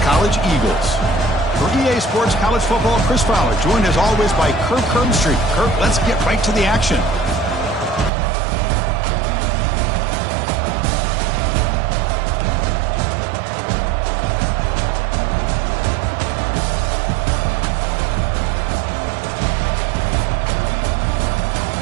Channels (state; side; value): drops out; left; at 8.1 s